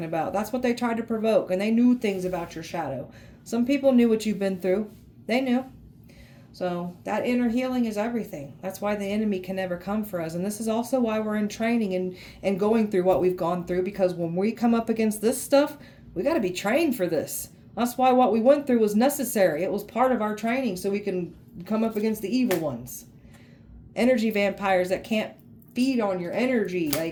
about. That's what they tried to provoke. And they knew things about your shadow. Some people knew what you've been through. They knew. So that inner healing is everything. That's why the enemy can never come for us. And this is also why we're in training and going through what we've gone through. Because when we come up against this stuff, we got to be trained for this. That's why what we went through was necessary. It was part of our training so we can come up against the evil ones. Energy vampires that can't feed on your energy.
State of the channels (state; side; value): identical; both; correlation 1.00